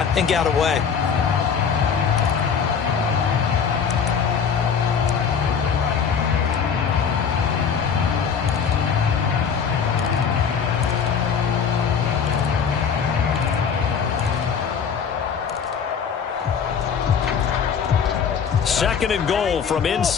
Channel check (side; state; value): right; quieter; 6.7 dB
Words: and got away. Second and goal from